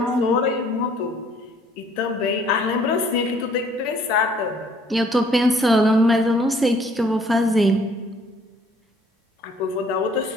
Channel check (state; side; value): normal; both; correlation 0.60